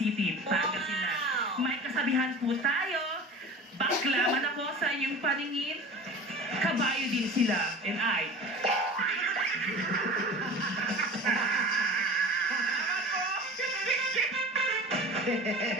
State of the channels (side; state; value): both; normal; correlation 0.37